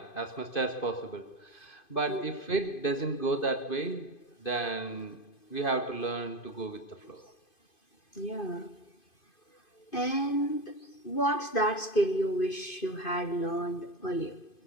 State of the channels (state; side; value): late; right; 2.5 ms